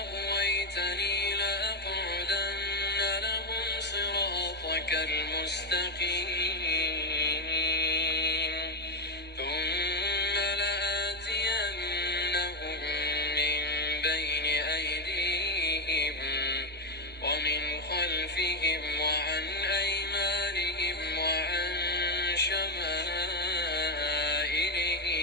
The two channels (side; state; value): both; normal; correlation 0.07